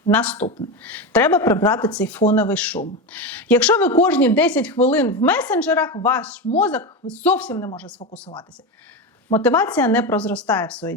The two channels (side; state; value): both; normal; correlation 0.17